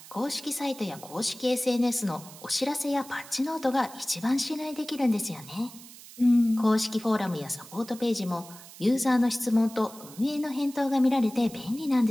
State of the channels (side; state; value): right; noise; hiss, 18 dB below the sound